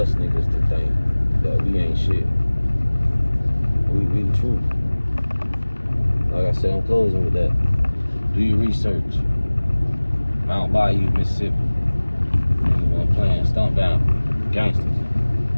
niggas to think that we ain't shit. We the truth. Like I said, I'm closing with that. Do your research. Mount Bayou, Mississippi. Niggas wanna plan, stomp down gangsters.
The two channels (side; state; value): both; inverted; correlation -1.00